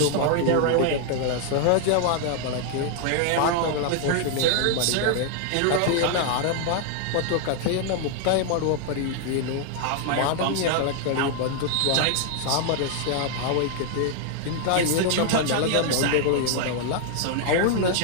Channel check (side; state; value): both; different; correlation 0.00